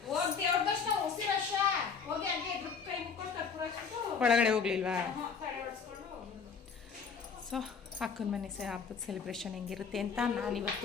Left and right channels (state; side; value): quieter; right; 5.9 dB